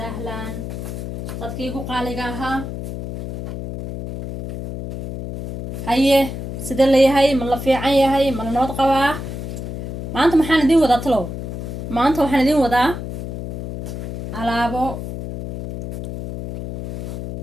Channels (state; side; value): noise; left; hum, 7 dB below the sound